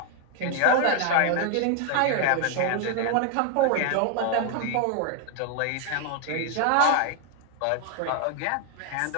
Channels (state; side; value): different; both; correlation 0.00